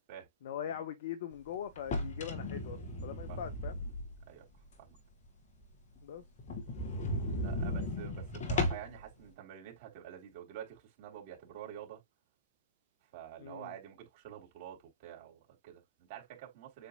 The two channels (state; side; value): inverted; both; correlation -0.31